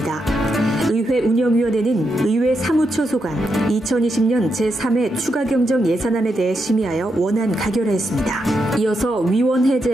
의회 운영위원회는 의회 사무처 소관 2020년 제3회 추가경정 예산안에 대해 심의하여 원안 가결하였습니다. 이어서 위원회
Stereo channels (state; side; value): normal; both; correlation 0.83